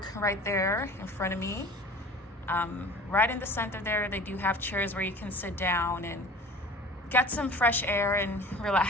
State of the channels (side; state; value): both; normal; correlation 0.41